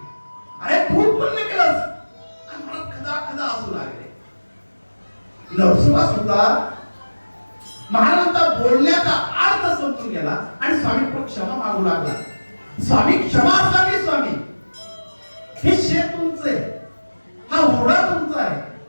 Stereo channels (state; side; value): inverted; both; correlation -1.00